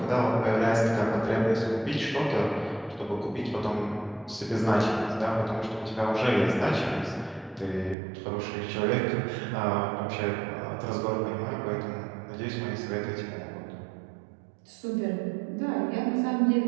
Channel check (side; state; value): left; drops out; at 8.0 s